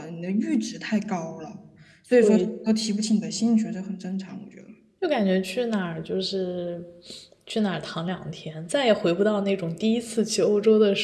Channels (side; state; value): both; identical; correlation 1.00